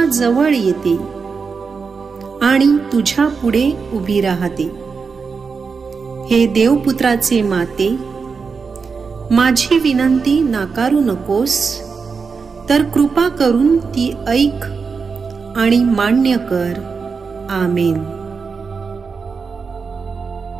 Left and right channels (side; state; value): left; quieter; 5.2 dB